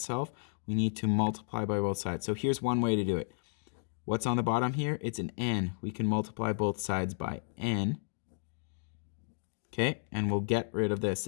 We need to multiply by both sides. So here's one way to do it. What's on the bottom here? It's an n. We can multiply both sides by n. Okay, and we'll get rid of this.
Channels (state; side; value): silent; right; digital silence